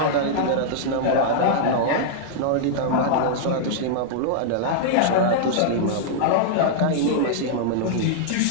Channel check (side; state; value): both; different; correlation -0.02